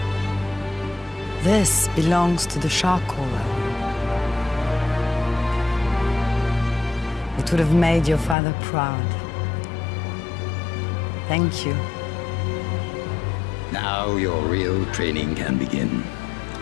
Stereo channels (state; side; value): drops out; right; at 8.3 s